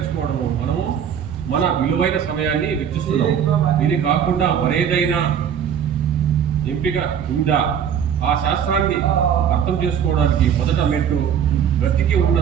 మనము మన విలువైన సమయాన్ని వెచ్చిస్తున్నాము. ఇది కాకుండా మరేదైనా ఎంపిక ఉందా? ఆ శాస్త్రాన్ని అర్థం చేసుకోవడానికి మొదట మెట్టు బ్రతికి ఉన్న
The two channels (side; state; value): left; quieter; 8.4 dB